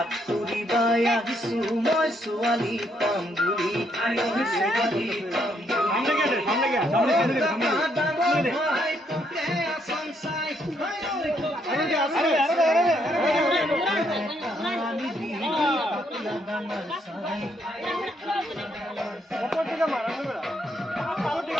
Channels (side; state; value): both; normal; correlation 0.73